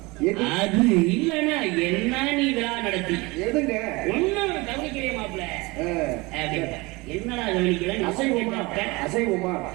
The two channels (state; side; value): quieter; left; 24.0 dB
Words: அது இல்லன்னா என்ன நீ விழா நடத்தி ஒன்னும் கவனிக்கிறே மாப்பிள்ள என்னடா கவனிக்கல அசைவமா